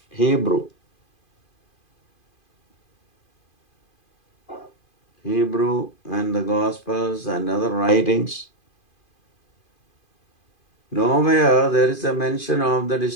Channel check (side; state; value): right; late; 2.5 ms